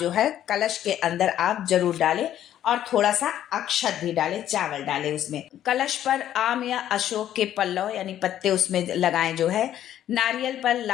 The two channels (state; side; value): quieter; right; 11.4 dB